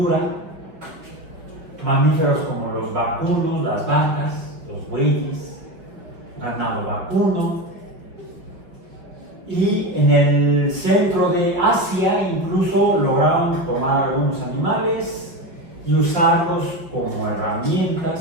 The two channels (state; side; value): late; left; 5.3 ms